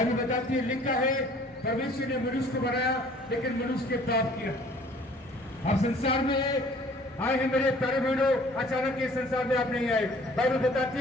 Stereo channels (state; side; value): normal; both; correlation 0.54